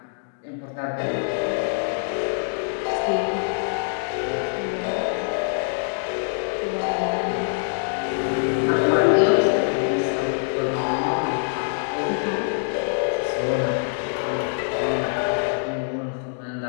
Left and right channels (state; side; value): silent; right; digital silence